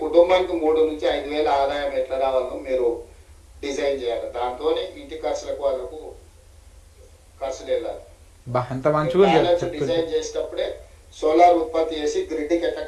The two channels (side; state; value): both; identical; correlation 1.00